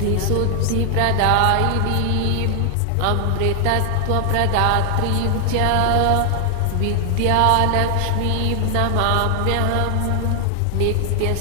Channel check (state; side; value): different; both; correlation 0.00